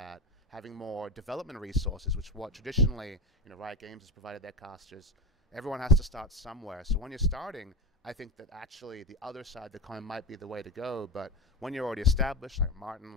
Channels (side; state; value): both; normal; correlation 0.24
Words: Having more development resources, which what traditionally Riot Games has provided their casters. Everyone has to start somewhere. So when you're starting, I think that actually the other side of the coin might be the way to go. But when you're already established, like Martin,